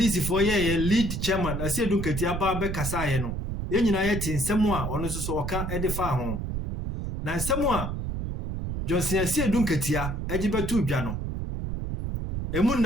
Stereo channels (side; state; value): right; noise; rumble, 4 dB below the sound